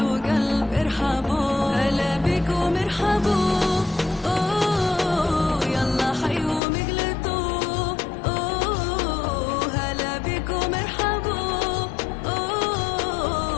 وقلب ارحبوا هلا بكم ارحبوا أوه يلا حيهم اقلتوا أوه هلا بكم ارحبوا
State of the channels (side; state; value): right; drops out; at 6.6 s